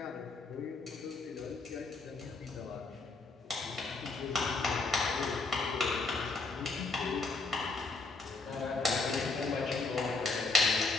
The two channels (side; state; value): right; quieter; 3.9 dB